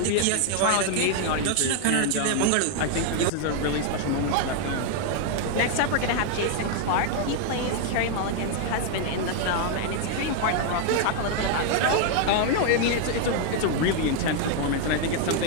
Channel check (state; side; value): different; both; correlation 0.00